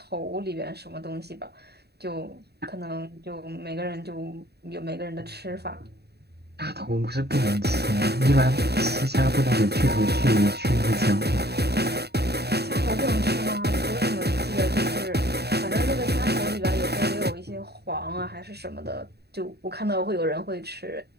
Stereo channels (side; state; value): left; late; 0.47 ms